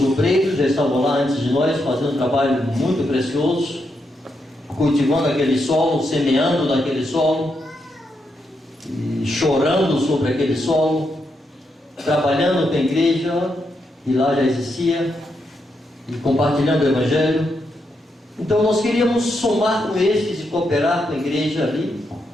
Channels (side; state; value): both; normal; correlation 0.82